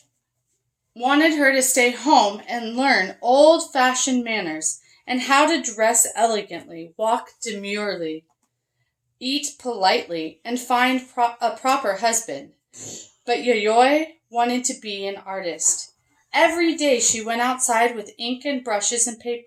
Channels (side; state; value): both; identical; correlation 1.00